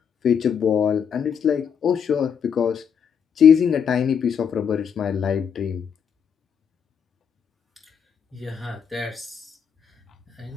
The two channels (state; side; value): quieter; right; 7.4 dB